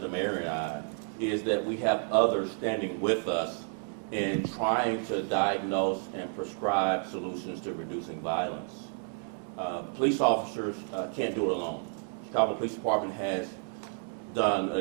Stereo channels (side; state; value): left; silent; 57 dB below the other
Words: the Mayor, and I, is that we have others standing with us in trying to diagnose and prescribe solutions to reducing violence. Police officers can't do it alone. Chicago Police Department has done an